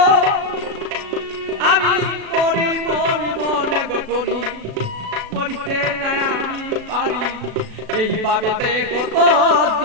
আমি মরি মরি মনে গো করি মরিতে না আমি পারি এইভাবে কত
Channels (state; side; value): late; left; 36 ms